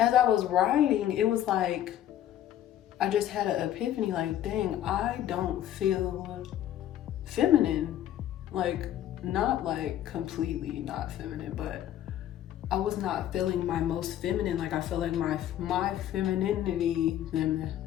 I was writing, it was like, I just had an epiphany, like, dang, I don't feel feminine. Like, not like completely not feminine, but I was not feeling my most feminine. Like, I feel like my femininity,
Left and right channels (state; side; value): quieter; right; 11.7 dB